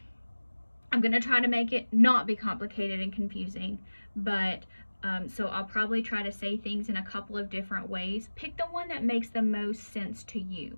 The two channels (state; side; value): inverted; both; correlation -1.00